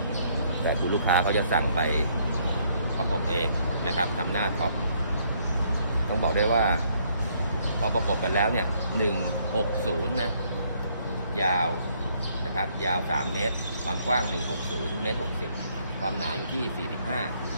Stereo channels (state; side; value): inverted; both; correlation -0.67